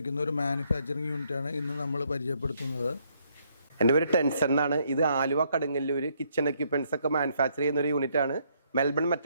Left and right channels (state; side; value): inverted; both; correlation -0.71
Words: ഒരു മാനുഫാക്ചറിങ് യൂണിറ്റാണ് ഇന്ന് നമ്മൾ പരിചയപ്പെടുത്തുന്നത്. എൻ്റെ പേര് ടെൻസൺ എന്നാണ്. ഇത് ആലുവ കടുങ്ങല്ലൂർ കിച്ചൺ എക്യുപ്മെൻറ്റ്സ് ഒക്കെ മാനുഫാക്ചർ ചെയ്യുന്ന ഒരു യൂണിറ്റാണ്. മെൽബൺ